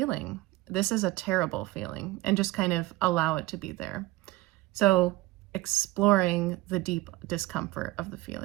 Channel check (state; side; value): quieter; left; 18.5 dB